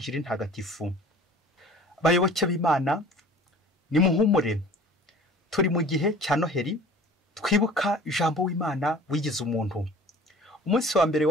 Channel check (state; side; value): normal; both; correlation 0.46